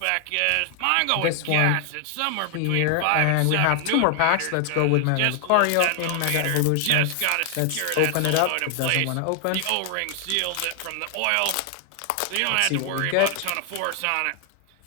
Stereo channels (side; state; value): both; different; correlation 0.00